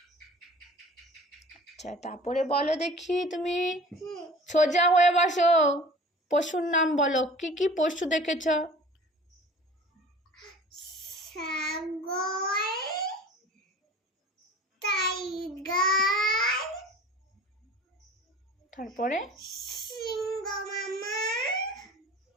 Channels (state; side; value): normal; both; correlation 0.43